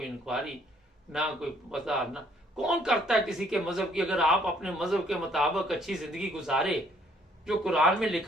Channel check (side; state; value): both; normal; correlation 0.64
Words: इंक्वायरी, ना कोई पता, ना कौन करता है किसी के मजहब की। अगर आप अपने मजहब के मुताबिक अच्छी जिंदगी गुजारे जो कुरान में